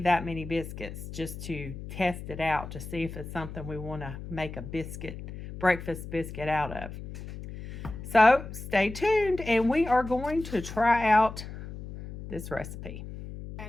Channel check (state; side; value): noise; left; hum, 10 dB below the sound